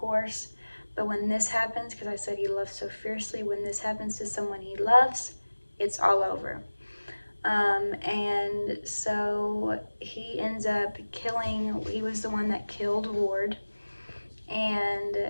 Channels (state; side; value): inverted; both; correlation -1.00